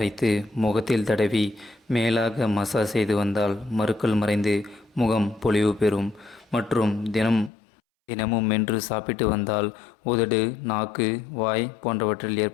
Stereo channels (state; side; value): drops out; right; at 7.5 s